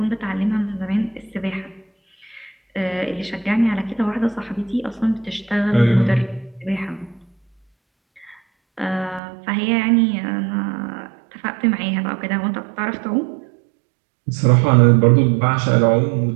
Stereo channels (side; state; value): left; drops out; at 9.2 s